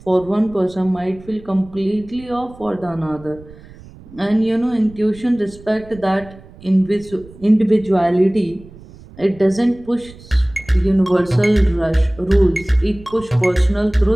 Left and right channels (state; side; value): noise; right; rumble, 21 dB below the sound